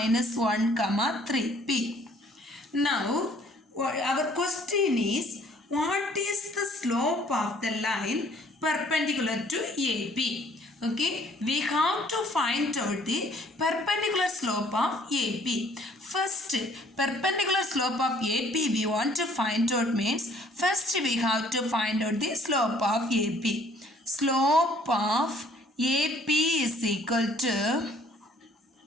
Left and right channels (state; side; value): normal; both; correlation 0.59